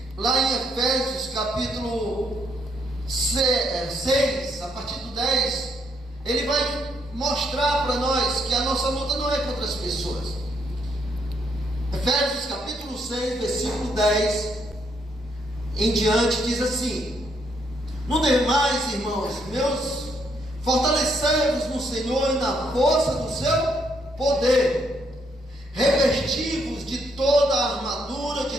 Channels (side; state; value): both; normal; correlation 0.73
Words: lá em Efésios capítulo 6, a partir do 10, ele vai mostrar para nós que a nossa luta não é contra as pessoas. Efésios capítulo 6, versículo 10 em diante diz assim: no demais, irmãos meus, fortalecei-vos no Senhor e na força do seu poder, revesti-vos de toda a armadura de